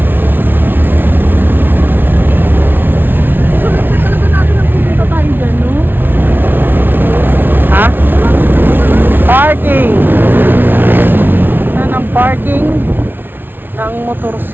So, talaga natin ang pupunta tayo dyan, no? Ha? Parking! Saan ang parking ng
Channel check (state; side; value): late; left; 0.099 ms